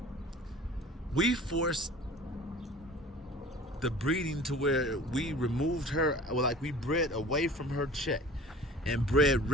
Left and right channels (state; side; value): normal; both; correlation 0.43